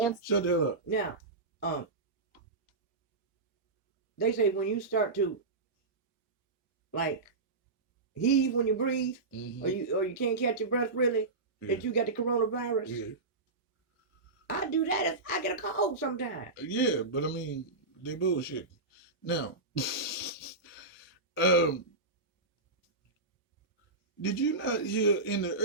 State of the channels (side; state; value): left; quieter; 3.5 dB